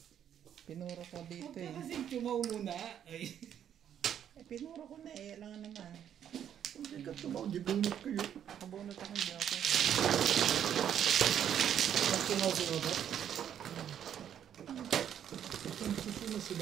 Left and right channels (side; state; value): left; quieter; 9.5 dB